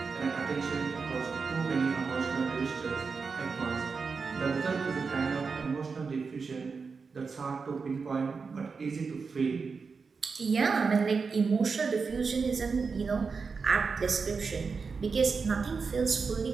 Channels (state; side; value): quieter; left; 5.0 dB